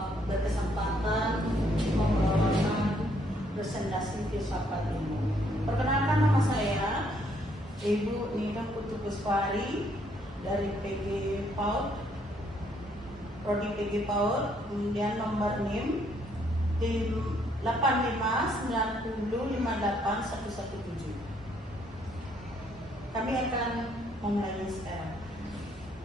berkesempatan membawakan presentasi filsafat ilmu. Perkenalkan, nama saya Ibu Nida Putu Puspari dari PG PAUD, Prodi PG PAUD, kemudian nomor NIM di 8590581117. Kami akan memulai sekarang.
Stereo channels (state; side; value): normal; both; correlation 0.69